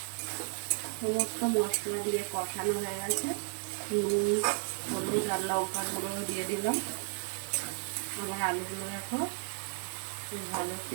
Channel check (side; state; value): left; silent; digital silence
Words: সমস্ত মশলা দিয়ে কষানো হয়ে গেছে। নুন, হলুদ আর লঙ্কার গুঁড়ো দিয়ে দিলাম। আমার আলুগুলো দেখো বেশ ভালো